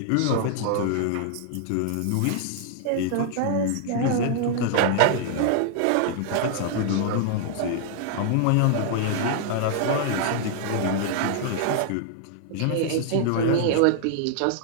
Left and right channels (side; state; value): both; different; correlation -0.01